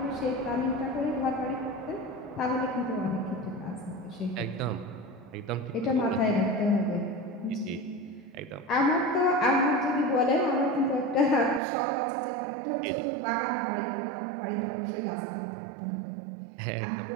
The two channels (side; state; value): left; drops out; at 11.6 s